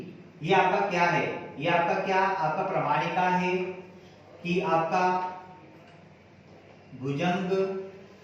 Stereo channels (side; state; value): both; identical; correlation 1.00